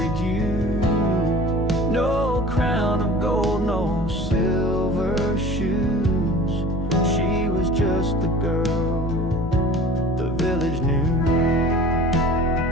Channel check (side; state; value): both; normal; correlation 0.43